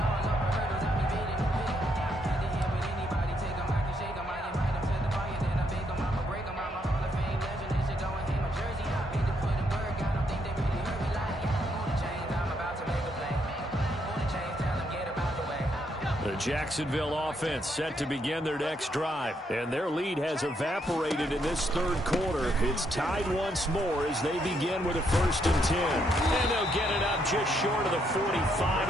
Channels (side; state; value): both; normal; correlation 0.75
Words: The Jacksonville offense set to begin their next drive, and their lead has evaporated in this third quarter. It's tied once more as they begin with a 1st and 10. And they'll get it up just short of the 45